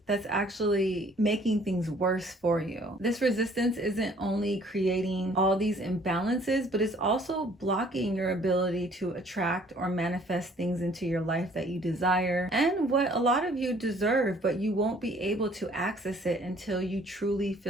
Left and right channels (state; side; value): normal; both; correlation 0.57